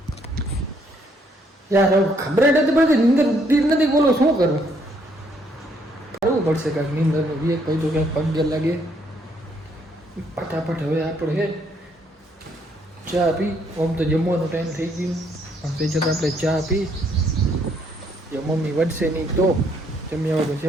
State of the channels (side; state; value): both; normal; correlation 0.69